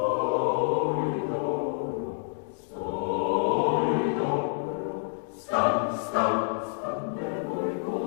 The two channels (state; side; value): silent; right; digital silence